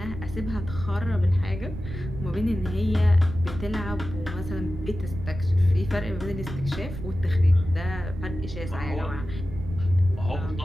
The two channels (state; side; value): noise; right; rumble, 9 dB below the sound